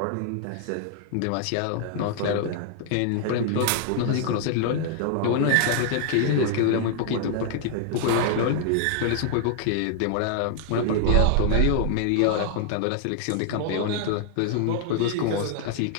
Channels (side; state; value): both; different; correlation -0.01